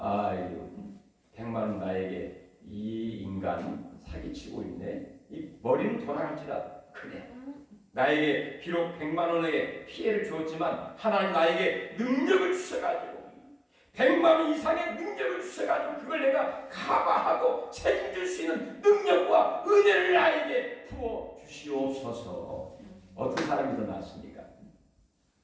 100만 원 나에게 이 인간 사기치고 있네. 이 머리는 돌아갈지라도 그래, 나에게 비록 100만 원의 피해를 주었지만 하나님 나에게 능력을 주셔가지고 100만 원 이상의 능력을 주셔가지고 그걸 내가 커버하고 책임질 수 있는 능력과 은혜를 나에게 부어 주시옵소서. 어떤 사람이 더 낫습니까?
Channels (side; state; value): both; identical; correlation 1.00